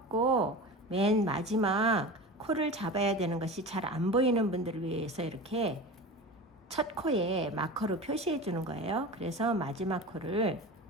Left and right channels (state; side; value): normal; both; correlation 0.31